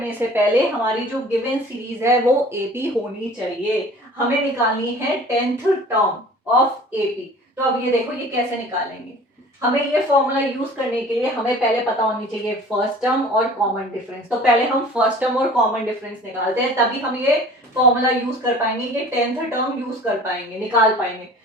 से पहले हमारी जो गिवन सीरीज है वो एपी होनी चाहिए। हमें निकालनी है 10th टर्म ऑफ एपी। तो अब ये देखो ये कैसे निकालेंगे, हमें ये फॉर्मूला यूज करने के लिए हमें पहले पता होनी चाहिए फर्स्ट टर्म और कॉमन डिफरेंस। तो पहले हम फर्स्ट टर्म और कॉमन डिफरेंस निकालते हैं, तभी हम ये फॉर्मूला यूज कर पाएंगे, ये 10th टर्म यूज कर पाएंगे, निकाल पाएंगे।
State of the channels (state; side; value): normal; both; correlation 0.45